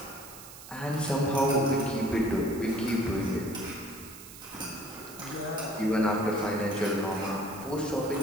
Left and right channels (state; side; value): noise; right; hiss, 16 dB below the sound